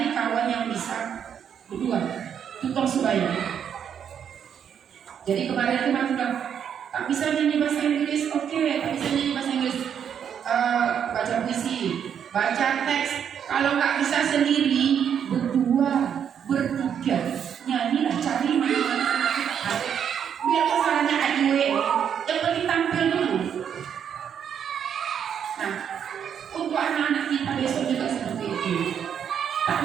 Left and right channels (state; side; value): quieter; left; 8.3 dB